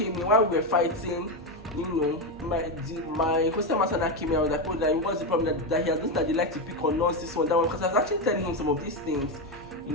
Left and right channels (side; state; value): both; normal; correlation 0.10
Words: in while we were fighting. My hostel master now came in. I was like, oh, that what's the problem that he has noticed that they like to pick on us, this one, that one, because I was actually telling him some of these things,